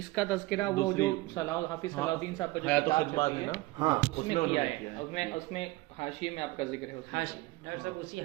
तस्करा वो जो दूसरी- हाफिज सलाउद्दीन साहब का जो हयात किताब खिदमत छपी है है, ना, हाँ उसमें उन्होंने किया किया है। उसमें हाशिए में आपका जिक्र है उसमें। हाशी डॉक्टर साहब उसी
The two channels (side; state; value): left; quieter; 20.4 dB